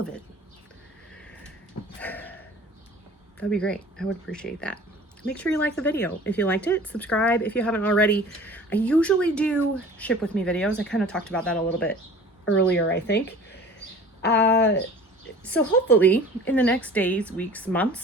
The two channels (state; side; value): normal; both; correlation 0.44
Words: of it. That'd be great. I would appreciate that. Make sure you like the video. If you liked it, subscribe if you haven't already. I usually do ship with me videos. I kind of talked about that a little bit earlier, I think. So hopefully in the next days, weeks,